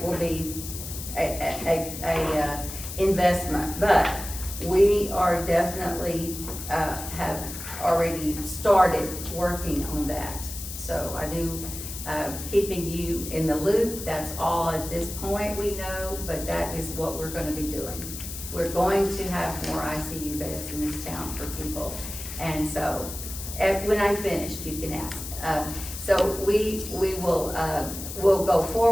investment, but we are definitely, have already started working on that. So I do, keeping you in the loop, that's all at this point we know, but that is what we're gonna be doing. We're going to have more ICU beds in this town for people. And so, when I'm finished, you can ask. So we will, we'll go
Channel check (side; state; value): left; noise; hiss, 9 dB below the sound